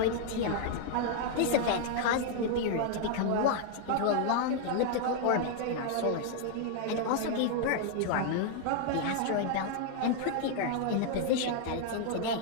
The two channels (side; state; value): both; different; correlation 0.00